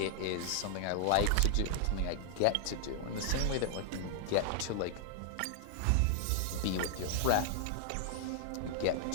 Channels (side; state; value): both; different; correlation -0.01